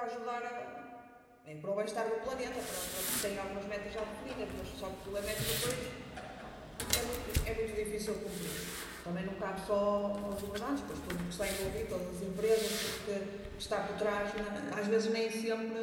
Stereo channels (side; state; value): both; identical; correlation 1.00